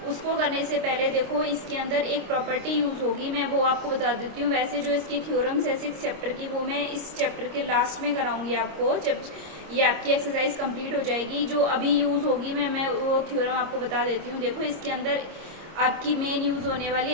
उसको करने से पहले देखो, इसके अंदर एक प्रॉपर्टी यूज होगी, मैं वो आपको बता देती हूँ। वैसे जो इसकी थ्योरम्स है 6 चैप्टर की, वो मैं इस चैप्टर के लास्ट में कराऊंगी आपको, जब ये आपकी एक्सरसाइज कंप्लीट हो जाएगी। जो अभी यूज होगी मैं वो थ्योरम आपको बता देती हूँ। देखो, इसके अंदर आपकी मेन यूज होने वाली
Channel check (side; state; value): left; late; 26 ms